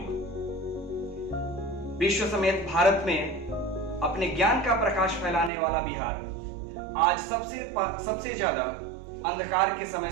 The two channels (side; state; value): left; drops out; at 5.5 s